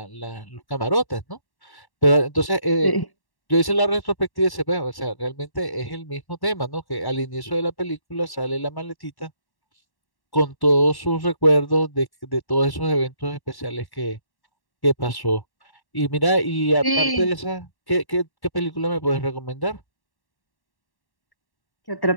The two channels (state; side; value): late; right; 1.1 ms